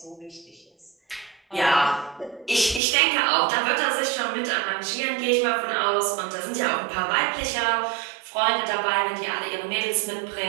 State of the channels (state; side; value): drops out; left; at 2.8 s